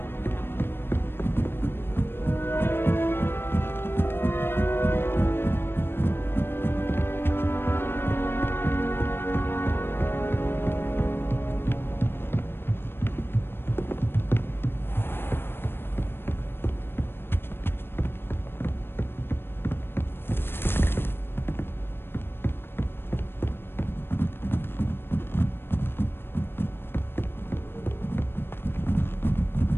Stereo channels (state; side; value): late; right; 0.11 ms